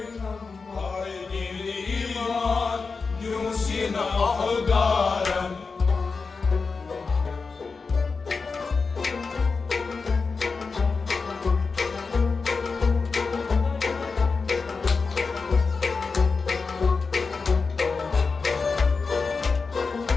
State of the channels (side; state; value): right; quieter; 4.6 dB